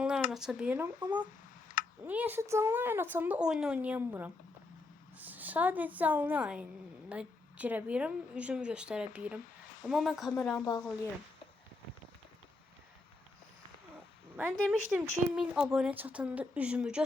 yayın aça bilirəm, amma niyəsə canlı yayın açanda oyun oynayamıram. Sadece canlı yayına girə bilirəm, üzümü göstərə bilirəm. Amma mən kameramı bağlayıram. Ben demiştim ki 1000 abone çatında üzümü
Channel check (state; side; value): quieter; right; 3.2 dB